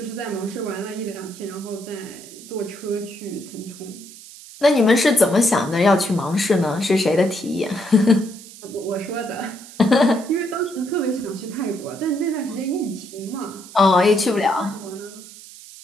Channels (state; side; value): noise; right; hiss, 17 dB below the sound